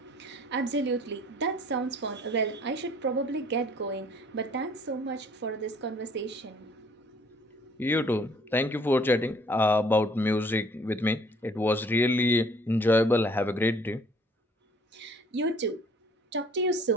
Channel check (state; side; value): normal; both; correlation 0.57